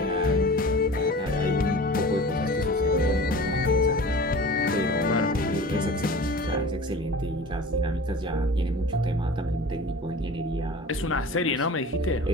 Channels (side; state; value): both; normal; correlation 0.39